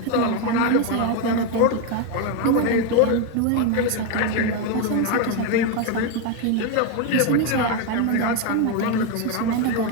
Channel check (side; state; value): both; different; correlation 0.02